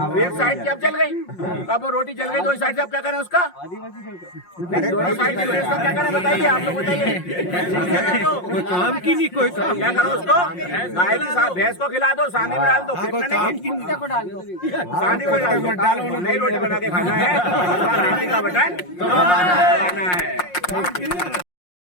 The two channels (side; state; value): right; late; 5.6 ms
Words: एक साइड की अब जल गई। अब वो रोटी जल गई, 2 साइड से अब क्या करें उसका? दोनों साइड की व्यवस्था क्या करें बताइए, आप लोग बताइए। कोई काम की नहीं, कोई काम क्या करो उसको? गाय की भैंस को खिला दो, सांडी में डाल दो, को डाल दो, सांडी में डाल दो, नई रोटी बना के खाना है, का बटन खाना है।